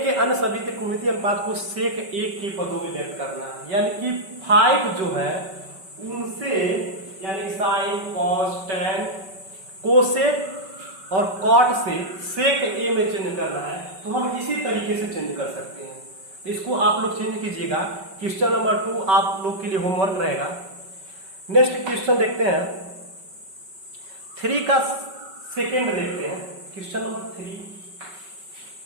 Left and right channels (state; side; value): late; left; 5.3 ms